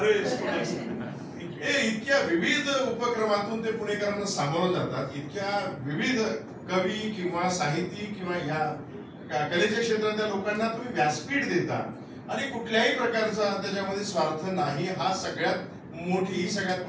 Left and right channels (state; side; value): identical; both; correlation 1.00